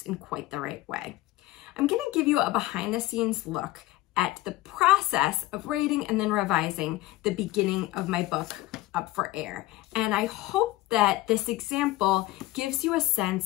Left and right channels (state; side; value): quieter; right; 17.6 dB